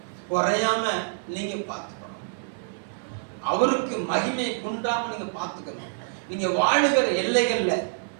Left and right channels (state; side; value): silent; left; 61 dB below the other